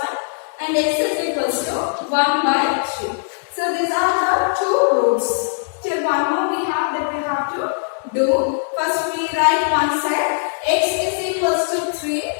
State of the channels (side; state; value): right; silent; 61 dB below the other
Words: and x is equals to 1 by 3. So these are the two roots. Till one more we have that we have to do. First we write one side x is equals to